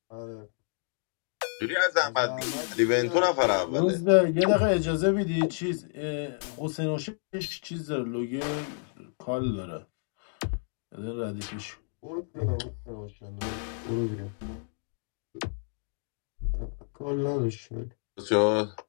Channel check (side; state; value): right; silent; 58 dB below the other